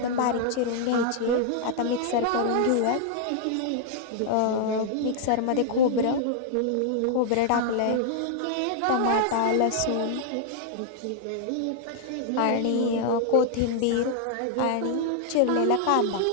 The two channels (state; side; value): different; both; correlation -0.01